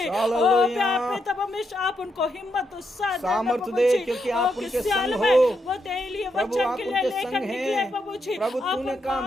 ओ प्यार पिता परमेश्वर, आप उनको हिम्मत और साथ देना प्रभु जी, क्योंकि आप उनके संग हो। वो तेरे लिए वचन के लिए लेकर निकले प्रभु जी। प्रभु तूने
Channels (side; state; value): both; normal; correlation 0.81